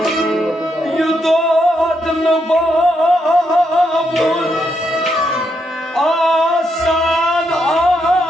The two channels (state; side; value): normal; both; correlation 0.79